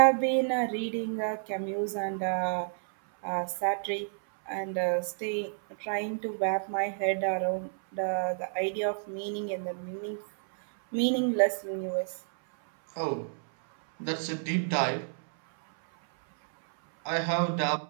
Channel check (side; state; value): left; silent; 58 dB below the other